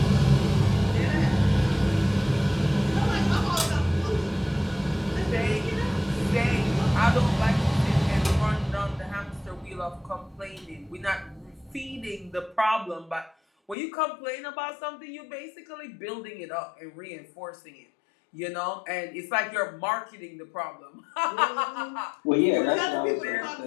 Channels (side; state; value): right; drops out; at 13.8 s